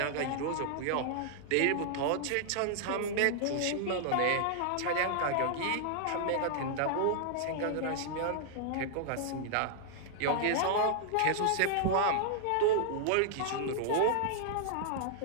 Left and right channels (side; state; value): both; different; correlation -0.01